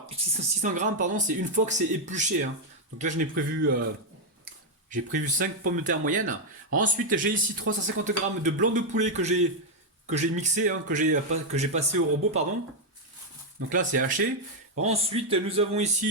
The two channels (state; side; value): normal; both; correlation 0.00